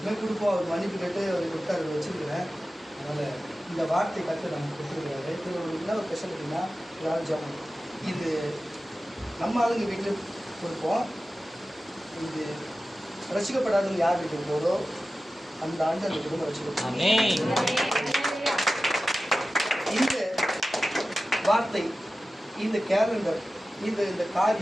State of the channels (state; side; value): normal; both; correlation 0.95